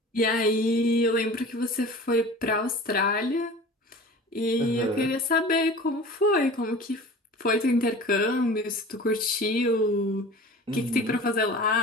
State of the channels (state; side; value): normal; both; correlation 0.39